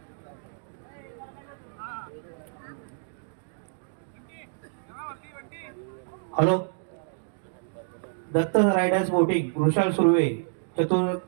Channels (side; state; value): left; silent; digital silence